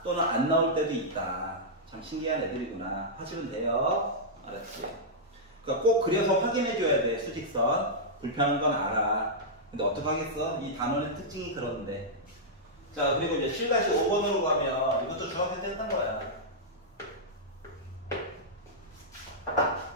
또는 안 나올 때도 있다. 참 신기한 애들이구나 하시면 돼요. 알았지? 그러니까 꼭 그려서 확인해 줘야 돼. 수직선 불편한 건 알아. 근데 어떡하겠어? 이 단원의 특징이 그런데. 자, 그리고 이제 7-5번으로 가면 이것도 중학생 때 했던 거야.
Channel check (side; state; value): both; normal; correlation -0.10